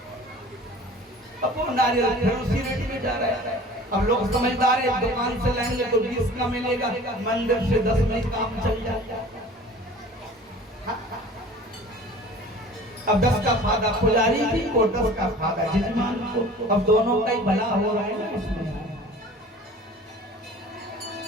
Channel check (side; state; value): both; normal; correlation 0.44